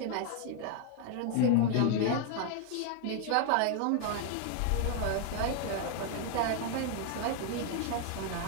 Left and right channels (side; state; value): both; different; correlation 0.00